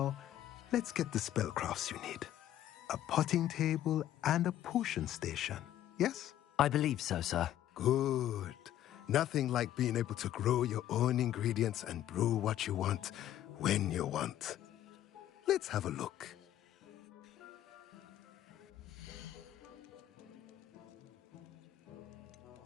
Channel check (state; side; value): quieter; right; 12.2 dB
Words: let's get the spellcrafts you need. A potting table and a potion station, yes? I believe so, sir. Good. Nothing like being able to grow your own ingredients and brew what you want when you want. Let's have a look.